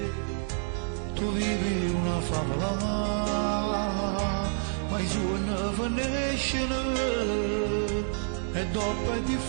Tu vivi una favola, ma i suoi non finiscono, e dopo è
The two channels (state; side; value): silent; left; digital silence